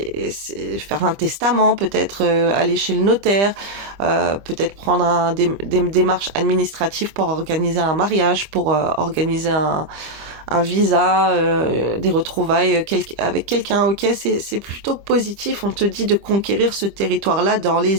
faire un testament, peut-être aller chez le notaire, peut-être prendre des démarches administratives pour organiser un mariage, pour organiser un visa, des retrouvailles avec quelqu'un. Ok, c'est plutôt positif. On te dit de conquérir ce territoire-là dans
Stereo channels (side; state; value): left; late; 25 ms